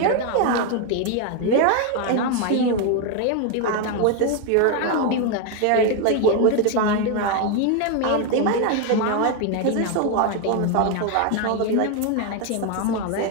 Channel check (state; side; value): different; both; correlation 0.01